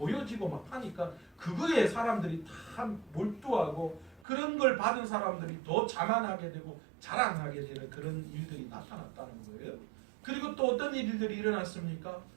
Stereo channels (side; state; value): left; drops out; at 4.2 s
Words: 막 하니까 그거에 사람들이 다 몰두하고 그런 걸 받은 사람들이 더 자만하게 되고 자랑하게 되는 그런 일들이 나타났다는 거예요. 그리고 또 어떤 일들이 일어났습니까?